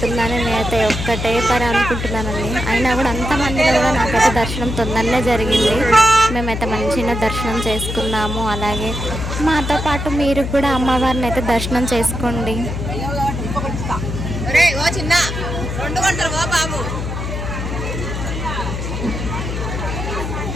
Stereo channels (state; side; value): noise; left; hum, 4 dB below the sound